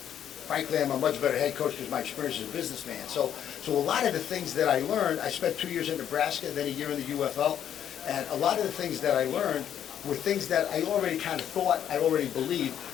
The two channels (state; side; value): quieter; right; 9.8 dB